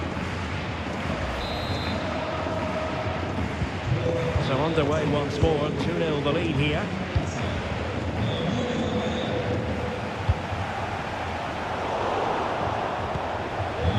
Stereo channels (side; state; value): both; identical; correlation 1.00